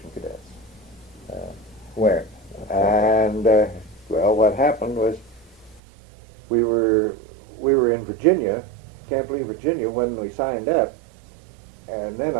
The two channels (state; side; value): drops out; left; at 5.8 s